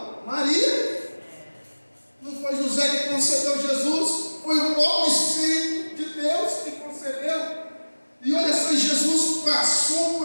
Maria. Não foi José que concebeu Jesus, foi o próprio Espírito de Deus que concebeu. E olha só, Jesus passou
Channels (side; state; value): both; inverted; correlation -1.00